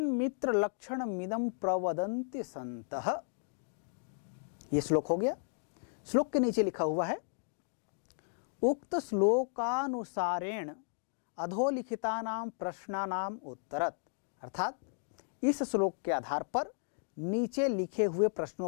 लक्षण मिदम प्रवदन्ति संतः। ये श्लोक हो गया। श्लोक के नीचे लिखा हुआ है, उक्त श्लोकानुसारेण अधोलिखितानां प्रश्नानां उत्तरत, अर्थात इस श्लोक के आधार पर नीचे लिखे हुए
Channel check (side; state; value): right; silent; digital silence